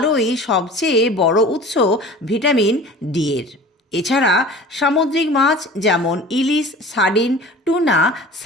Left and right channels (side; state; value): both; normal; correlation 0.41